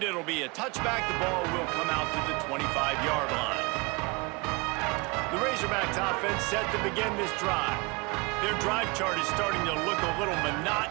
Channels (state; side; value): quieter; left; 27.7 dB